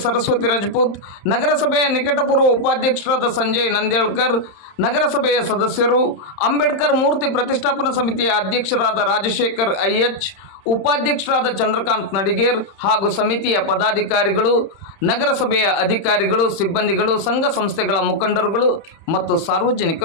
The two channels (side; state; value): right; late; 31 ms